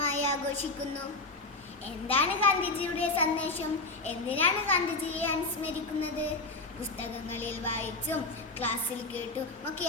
ആഘോഷിക്കുന്നു. എന്താണ് ഗാന്ധിജിയുടെ സന്ദേശം? എന്തിനാണ് ഗാന്ധിജിയെ അനുസ്മരിക്കുന്നത്? പുസ്തകങ്ങളിൽ വായിച്ചും ക്ലാസ്സിൽ കേട്ടും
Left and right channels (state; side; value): quieter; right; 3.3 dB